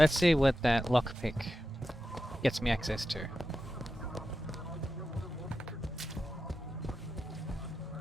see what that lockpick gets me access to.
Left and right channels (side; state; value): both; normal; correlation 0.90